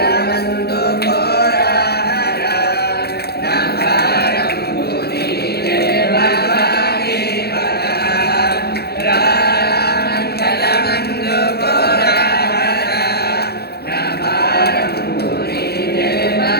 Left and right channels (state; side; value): late; right; 0.47 ms